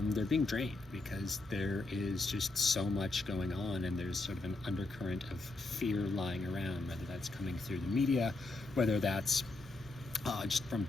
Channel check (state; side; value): quieter; right; 3.1 dB